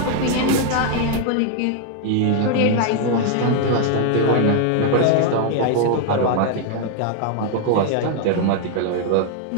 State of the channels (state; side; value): different; both; correlation 0.00